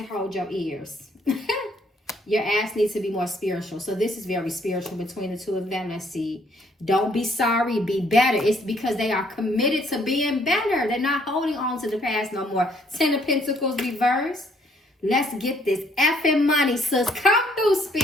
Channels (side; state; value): both; normal; correlation 0.66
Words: hold your ears. Your ass needs to be more spiritual. So this is very spiritual between the 2 of them. Let's see. Don't be sorry, be better. It's because they are committed to being better. They're not holding on to the past no more. 10 of Pentacles reverse. Let's get this effing money, sis. Come through,